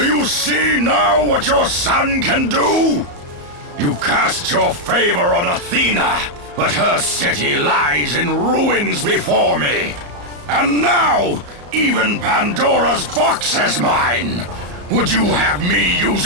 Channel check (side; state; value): left; late; 34 ms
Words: you see now what your son can do? You cast your favor on Athena, but her city lies in ruins before me. And now, even Pandora's box is mine! Would you have me use